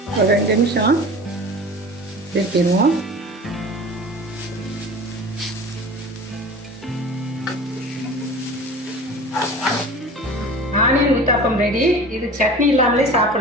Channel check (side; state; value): both; normal; correlation 0.37